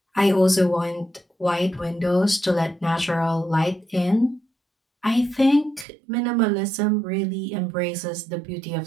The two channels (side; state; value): left; drops out; at 5.9 s